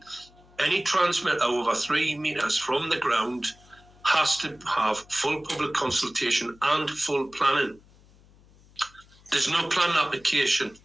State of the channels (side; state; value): left; noise; hum, 27 dB below the sound